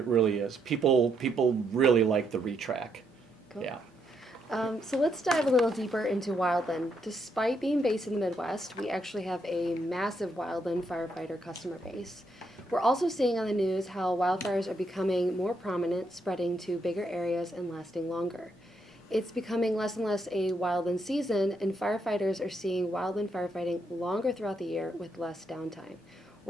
really is. People really like the Retract. Cool. Yeah. So let's dive a little deeper into Wildland. Despite being based in the Midwest, we actually have a massive Wildland firefighter customer base. We're also seeing on the news how wildfires are becoming more prominent, spreading to bigger areas and lasting longer. It's becoming less and less a wildland season, and firefighters are seeing wildland firefighting longer throughout the year with less downtime.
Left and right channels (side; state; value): both; normal; correlation 0.77